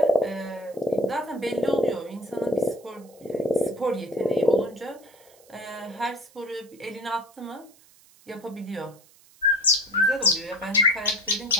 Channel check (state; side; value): noise; right; hiss, 27 dB below the sound